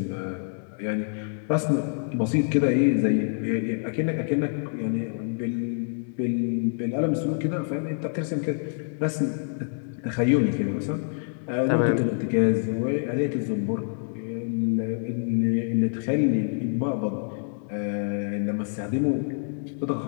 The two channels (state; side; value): silent; right; digital silence